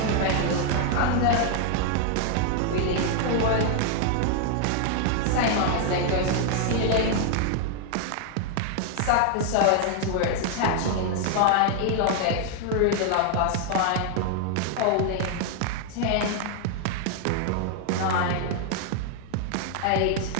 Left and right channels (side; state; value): both; different; correlation 0.00